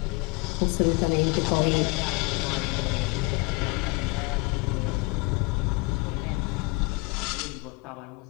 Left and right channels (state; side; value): quieter; right; 27.3 dB